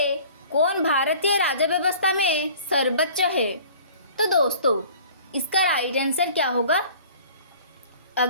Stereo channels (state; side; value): inverted; both; correlation -0.48